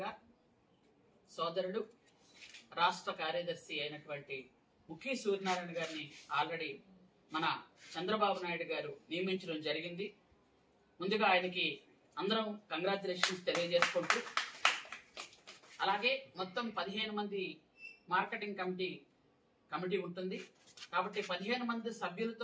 గా సోదరుడు రాష్ట్ర కార్యదర్శి అయినటువంటి ముఖి సూర్యనారాయణ గారిని ఆల్రెడీ మన చంద్రబాబు నాయుడు గారు నియమించడం జరిగింది. ముందుగా ఆయనకి అందరం కంగ్రాచులేషన్స్ తెలియజేసుకుంటూ, అలాగే మొత్తం 15 మంది మార్కెటింగ్ కమిటీ ఉంటుంది కాబట్టి 15 మంది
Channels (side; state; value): both; identical; correlation 1.00